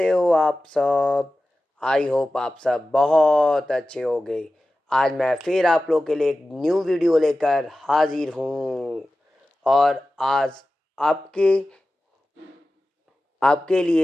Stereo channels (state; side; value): normal; both; correlation 0.95